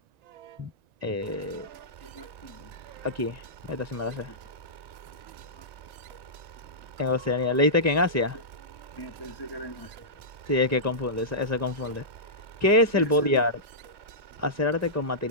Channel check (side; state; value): left; late; 1.9 ms